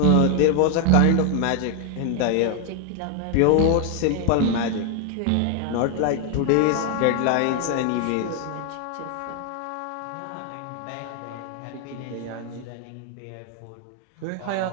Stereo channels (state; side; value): different; both; correlation 0.01